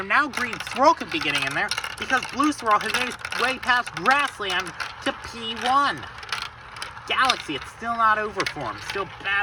now Green Swirl could be getting in there because Blue Swirl has made his way past Grassland to P1. Galaxy, it's still not over for him. Still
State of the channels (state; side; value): identical; both; correlation 1.00